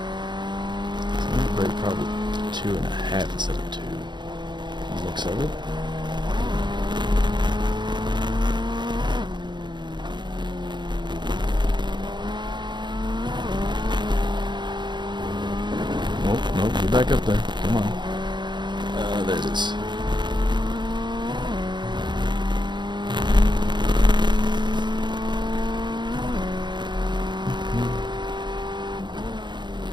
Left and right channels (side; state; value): left; late; 0.22 ms